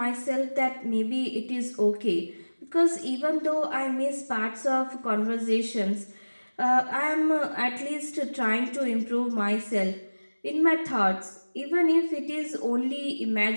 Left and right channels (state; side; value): inverted; both; correlation -1.00